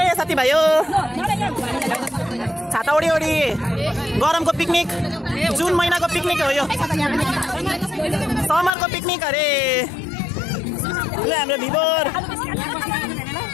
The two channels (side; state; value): right; drops out; at 8.7 s